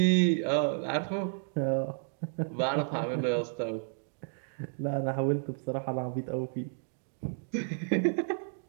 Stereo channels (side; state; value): left; silent; digital silence